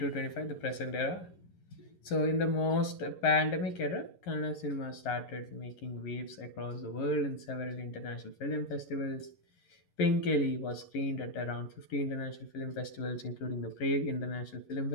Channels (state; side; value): late; right; 11 ms